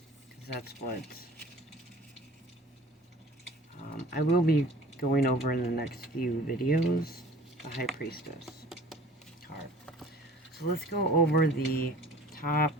because that's what I will be going over in the next few videos, the High Priestess card. So let's go over the top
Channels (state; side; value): normal; both; correlation 0.46